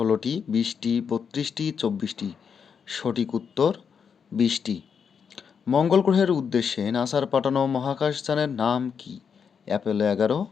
20টি, 32টি, 24টি? সঠিক উত্তর 20টি। মঙ্গল গ্রহের উদ্দেশ্যে নাসার পাঠানো মহাকাশযানের নাম কি? Apollo 11,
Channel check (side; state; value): right; quieter; 6.7 dB